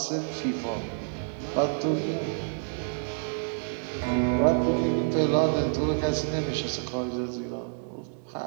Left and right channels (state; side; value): silent; left; digital silence